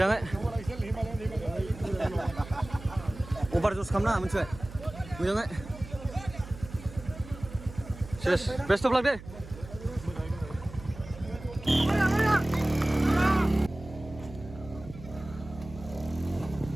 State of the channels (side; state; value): right; noise; hum, 15 dB below the sound